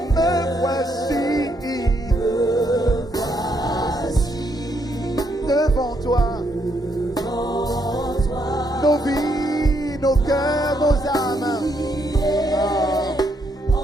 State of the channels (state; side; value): normal; both; correlation 0.75